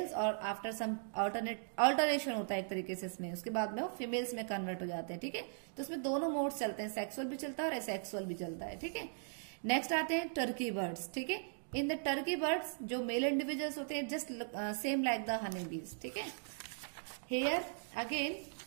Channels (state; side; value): silent; left; digital silence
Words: और आफ्टर सम अल्टरेशन होता है एक तरीके से इसमें, उसके बाद में वो फीमेल्स में कन्वर्ट हो जाते हैं. ठीक है. तो इसमें दोनों मोड्स चलते हैं, सेक्सुअल भी चलता है और एसेक्सुअल भी चलता है. ठीक है. नेक्स्ट आते हैं टर्की बर्ड्स. ठीक है. इन द टर्की बर्ड्स जो मेल इंडिविजुअल्स होते हैं just same like the honey bees. ठीक है. Here again